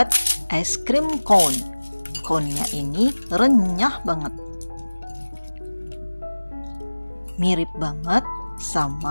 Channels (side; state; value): both; inverted; correlation -1.00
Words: es krim cone. Cone-nya ini renyah banget. Mirip banget